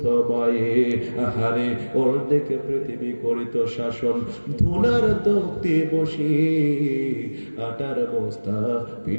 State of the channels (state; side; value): inverted; both; correlation -1.00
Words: মায়ে। আহারে ওর দেখে পৃথিবী করিত শাসন, ধুনার তক্তে বসে আটার বস্তা